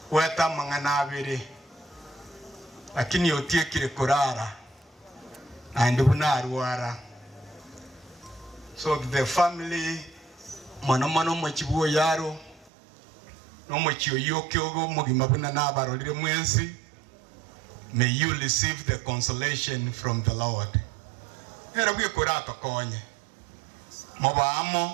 weta mangana abiri lakini otiekire kurara andi bunarwara so the family mono mochibuo yaro no mochio yokyogo mugima buna nabarolire mwensi. May you receive the consolation from the Lord. Era bwe kurato konye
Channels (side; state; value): left; drops out; at 12.7 s